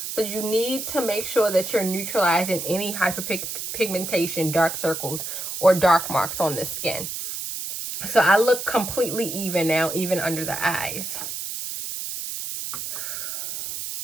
So you need to make sure that you're neutralizing any hyperpigmentation, dark circles, or dark marks on the skin. So I look completely even now, even under the eyes.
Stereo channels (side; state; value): right; noise; hiss, 6 dB below the sound